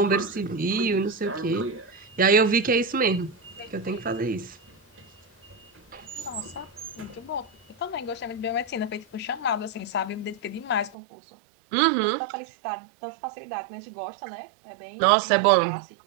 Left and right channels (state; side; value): drops out; left; at 11.0 s